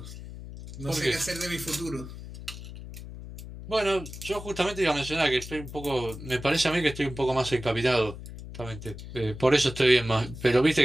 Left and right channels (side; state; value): left; noise; hum, 12 dB below the sound